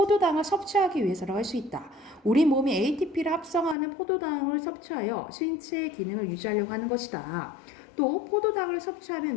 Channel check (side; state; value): right; drops out; at 3.8 s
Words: 섭취하기 위해서라고 할 수 있다. 우리 몸이 ATP를 합성하는 포도당을 섭취하여 신체의 기능을 유지하려고 하는 것이다. 또 포도당을